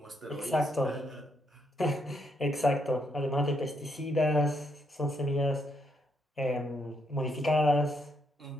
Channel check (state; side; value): normal; both; correlation 0.76